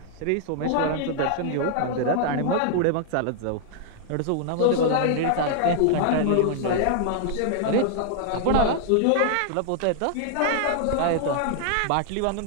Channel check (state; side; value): different; both; correlation -0.01